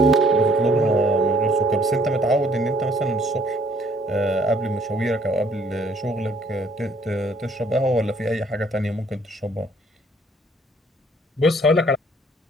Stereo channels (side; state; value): both; normal; correlation 0.61